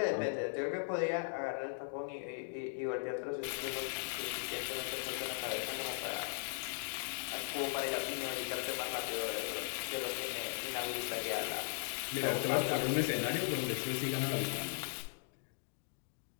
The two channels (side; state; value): right; silent; digital silence